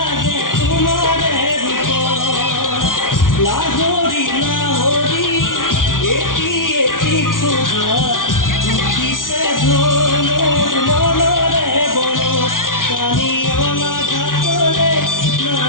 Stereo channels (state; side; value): late; right; 0.89 ms